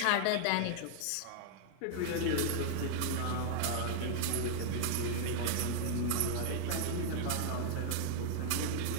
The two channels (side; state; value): both; different; correlation -0.01